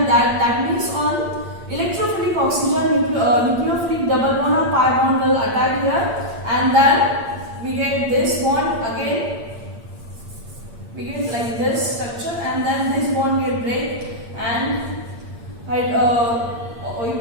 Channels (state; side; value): late; left; 8.7 ms